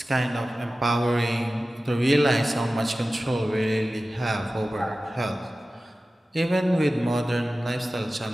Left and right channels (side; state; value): both; normal; correlation 0.95